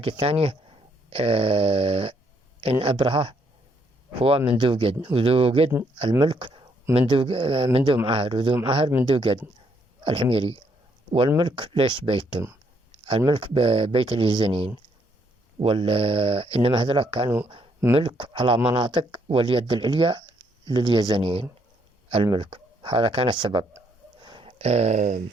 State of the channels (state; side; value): normal; both; correlation 0.72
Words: الثانية إن أبرهة هو من ذو قدن، وذو قدن الملك من ذو معاهر، وذو معاهر من ذو قدن الحميري. والملك ليش بيتهم؟ الملك بيت اليزنيين، إنما هذول كانوا ملك على مناطق، واليد العليا لليزنيين الملك. هذا كان السبب.